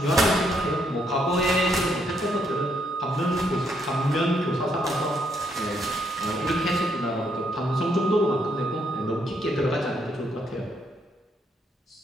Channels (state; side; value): normal; both; correlation 0.74